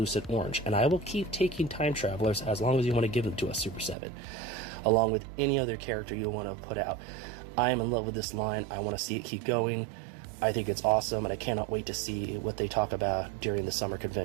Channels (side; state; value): left; drops out; at 4.0 s